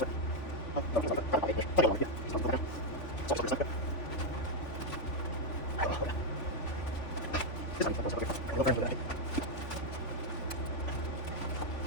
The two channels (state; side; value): late; right; 3.5 ms